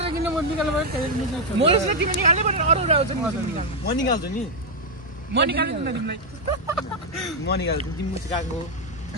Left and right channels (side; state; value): both; normal; correlation 0.01